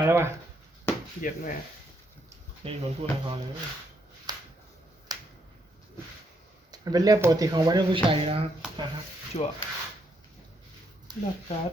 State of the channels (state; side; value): normal; both; correlation 0.76